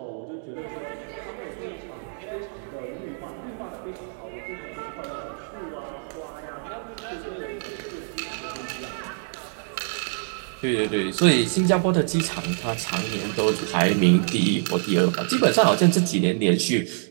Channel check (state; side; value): silent; left; digital silence